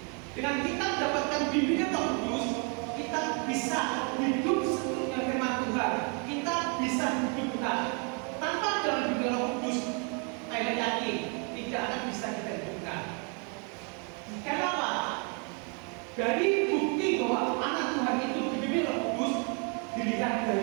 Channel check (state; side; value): quieter; left; 36.7 dB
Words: Dengan kita mendapatkan bimbingan Roh Kudus, kita bisa hidup seturut dengan firman Tuhan. Kita bisa hidup benar. Tanpa dalam bimbingan Roh Kudus, saya yakin tidak akan bisa kita hidupkan. Kenapa? Dari bukti bahwa anak Tuhan itu dibimbing Roh Kudus dilihat